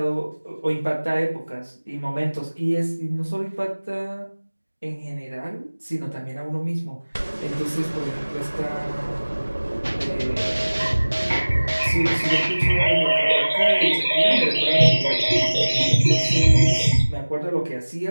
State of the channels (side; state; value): both; inverted; correlation -1.00